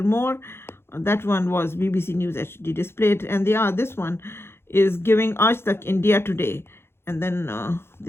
that one was BBC News HD displayed, and this one is giving Aaj Tak India Today. And then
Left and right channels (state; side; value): late; right; 0.12 ms